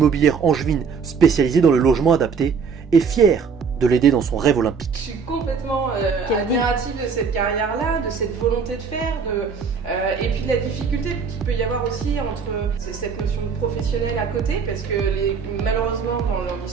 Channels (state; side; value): quieter; left; 5.7 dB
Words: angevine spécialisée dans le logement adapté, est fière de l'aider dans son rêve olympique. Je suis complètement admirative de cette carrière-là, de cette volonté de faire, et puis de la difficulté qu'il peut y avoir aussi entre cette notion de professionnel à côté, parce que malheureusement dans le